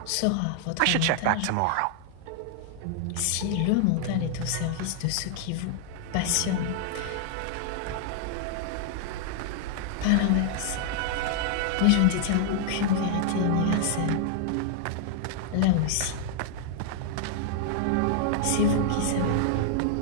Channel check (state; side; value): different; both; correlation -0.01